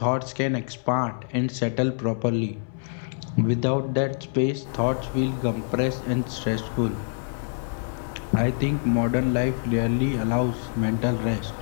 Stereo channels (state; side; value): silent; right; 61 dB below the other